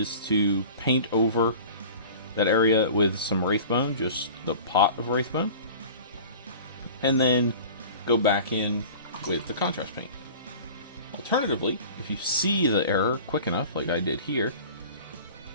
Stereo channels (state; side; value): inverted; both; correlation -0.40